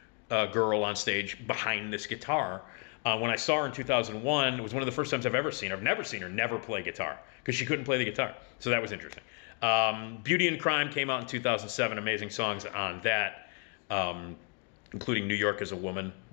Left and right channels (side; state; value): right; quieter; 37.2 dB